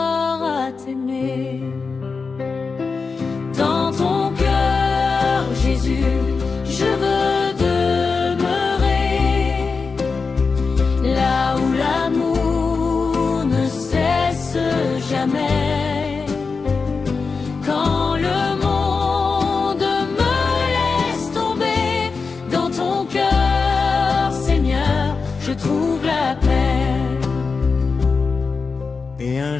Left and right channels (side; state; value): right; quieter; 4.7 dB